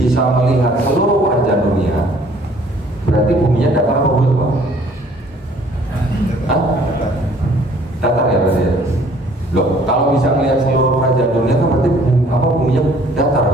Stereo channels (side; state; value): both; normal; correlation 0.57